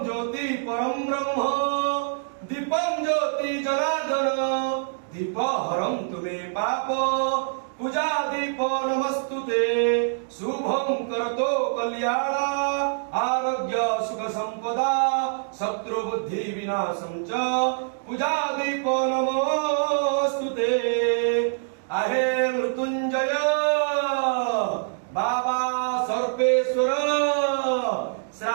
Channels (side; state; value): left; silent; digital silence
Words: ज्योति परम ब्रह्म दीपम ज्योति जनार्दन दीप हरम तुमे पाप पूजा दीप नमस्तुते शुभम करतो कल्याण आरोग्य सुख संपदा शत्रु बुद्धि विनाशम च पूजा दीप नमस्तुते आहे मृत्युंजय बाबा सर्पेश्वर